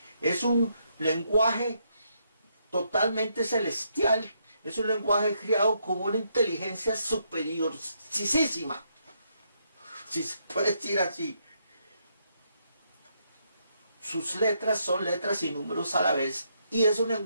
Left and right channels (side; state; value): both; inverted; correlation -0.76